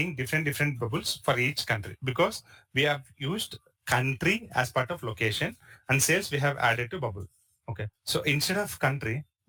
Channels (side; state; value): both; identical; correlation 1.00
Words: different bubbles for each country because we have used country as part of location and sales we have added to bubble. Okay. So instead of country,